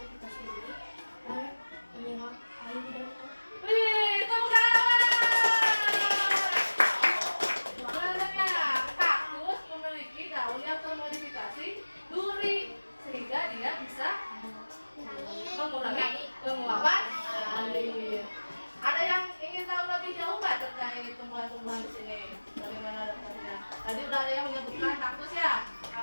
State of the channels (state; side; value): inverted; both; correlation -1.00